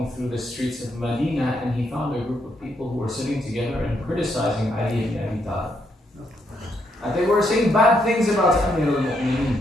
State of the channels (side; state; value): both; normal; correlation 0.76